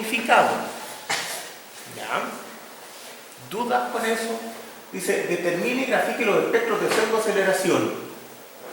¿Ya? ¿Dudas con eso? Dice, determine y grafique los espectros de pseudoaceleración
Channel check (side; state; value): both; identical; correlation 1.00